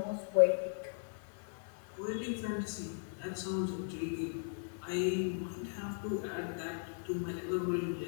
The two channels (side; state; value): right; silent; digital silence